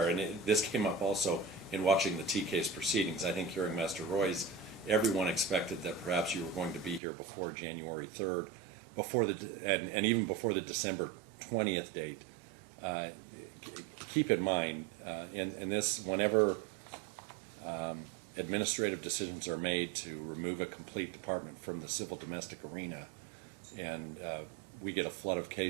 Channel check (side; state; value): left; drops out; at 7.0 s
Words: and this came up also in watching the T case proceedings. I think hearing Master Roy's, everyone expected that perhaps you were going to be here before January 3rd, and even before the December 20th date. Keep in mind, in this, whenever administrative decisions are made to remove a complete department from the civil domestic arena, and we get a flood of